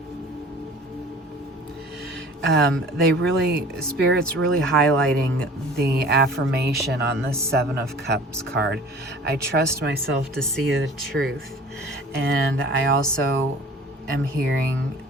Spirit's really highlighting the affirmation on the Seven of Cups card. I trust myself to see the truth. And I also am hearing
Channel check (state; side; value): normal; both; correlation 0.45